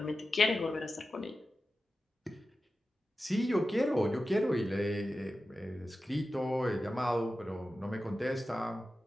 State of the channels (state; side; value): normal; both; correlation 0.93